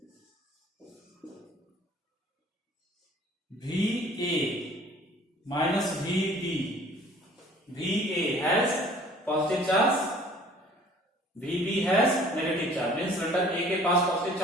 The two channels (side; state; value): both; normal; correlation 0.52